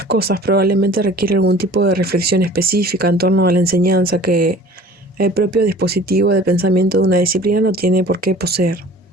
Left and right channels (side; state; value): both; normal; correlation 0.46